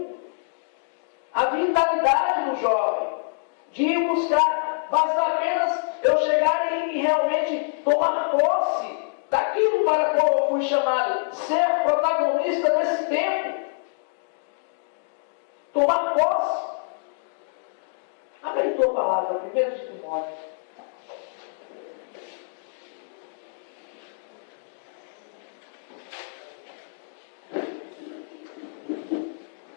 a vitalidade do jovem, de ir buscar, basta apenas eu chegar e realmente tomar posse daquilo para qual eu fui chamado, ser protagonista desse tempo. Tomar posse. Abre aí tua palavra, 1 de Timóteo.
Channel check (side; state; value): right; silent; digital silence